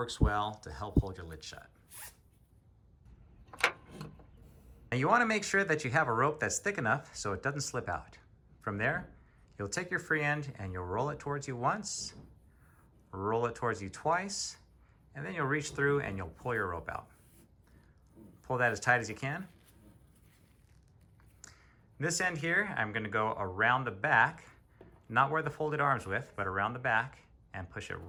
well to help hold your lid shut. Now you want to make sure that you have a rope that's thick enough so it doesn't slip out. From there, you'll take your free end and you'll roll it towards you once, roll it towards you twice, and then you'll reach through and you'll pull your rope out. Pull that as tight as you can. This end here, I'm going to go around the back, not where the folded arms with, but around the back, and push it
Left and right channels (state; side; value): identical; both; correlation 1.00